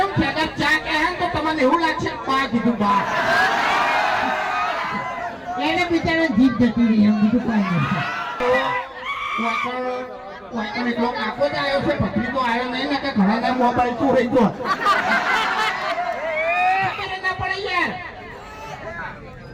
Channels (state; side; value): identical; both; correlation 1.00